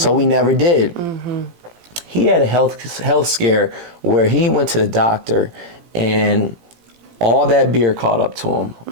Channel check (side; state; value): left; late; 18 ms